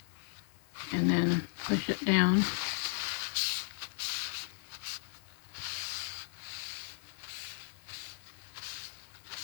and then push it down.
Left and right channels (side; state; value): right; silent; digital silence